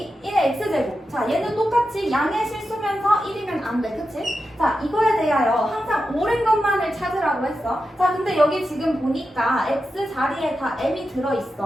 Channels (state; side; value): normal; both; correlation 0.90